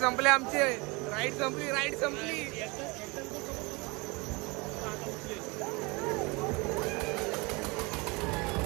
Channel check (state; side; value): quieter; left; 26.9 dB